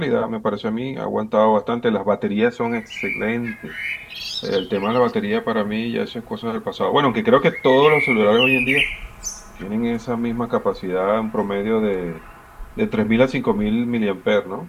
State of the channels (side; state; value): both; identical; correlation 1.00